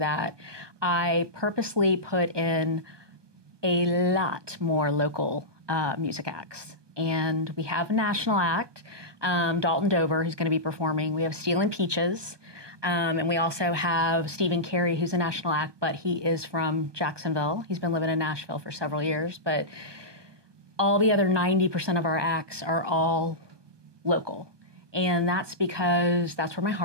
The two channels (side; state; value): left; late; 1.2 ms